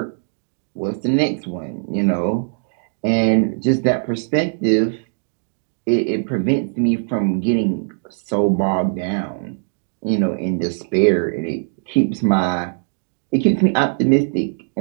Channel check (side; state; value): left; silent; digital silence